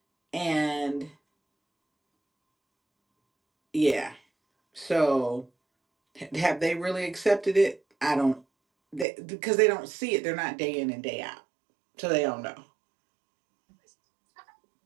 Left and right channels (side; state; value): left; drops out; at 9.1 s